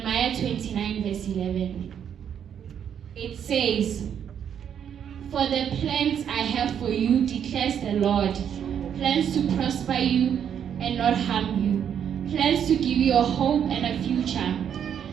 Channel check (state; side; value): quieter; left; 8.6 dB